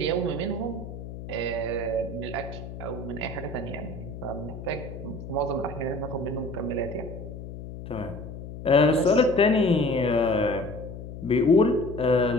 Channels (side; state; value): left; noise; hum, 11 dB below the sound